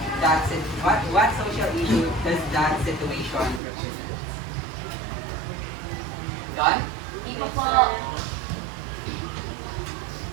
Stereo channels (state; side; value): drops out; left; at 3.6 s